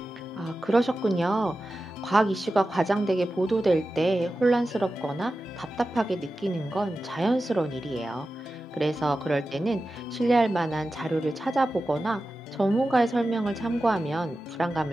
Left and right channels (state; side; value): normal; both; correlation 0.93